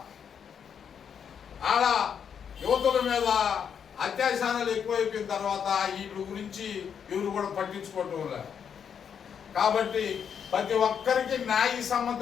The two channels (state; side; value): quieter; right; 7.6 dB